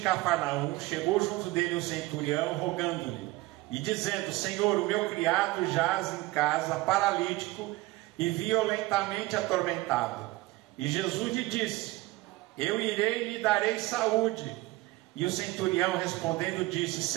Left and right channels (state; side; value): quieter; left; 19.9 dB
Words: chegou junto dele um centurião, rogando-lhe, e dizendo: Senhor, o meu criado jaz em casa, paralítico e violentamente atormentado. E Jesus lhe disse: Eu irei e lhe darei saúde. E o centurião respondendo disse: